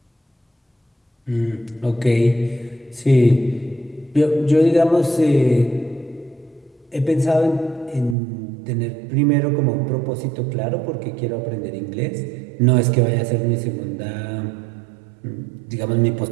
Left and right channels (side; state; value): left; drops out; at 8.2 s